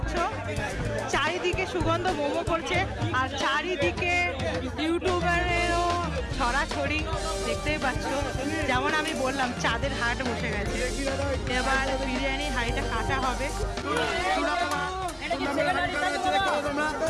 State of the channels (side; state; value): both; identical; correlation 1.00